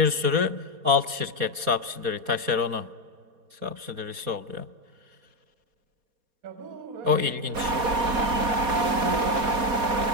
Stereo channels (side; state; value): left; late; 4.2 ms